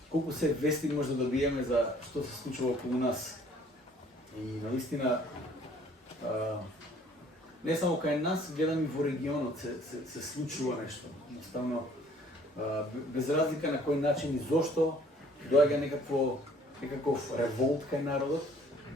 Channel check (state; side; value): normal; both; correlation 0.57